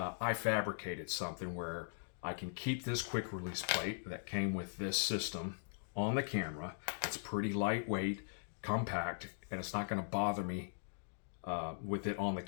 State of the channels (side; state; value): right; silent; digital silence